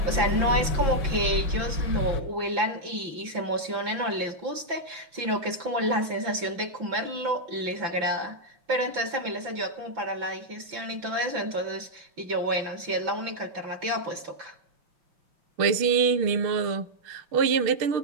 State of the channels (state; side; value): late; left; 5.9 ms